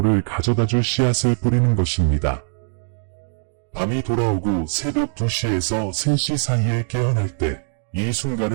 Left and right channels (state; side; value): silent; left; digital silence